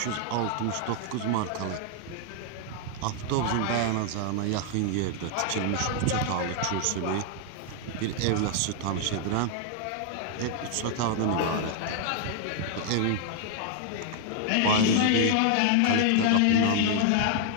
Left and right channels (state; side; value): different; both; correlation 0.00